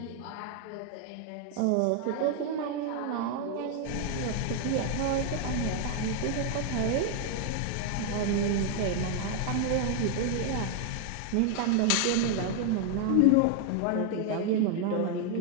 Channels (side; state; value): both; different; correlation 0.00